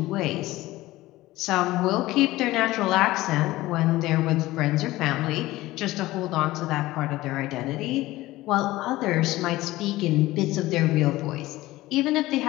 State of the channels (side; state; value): right; quieter; 17.7 dB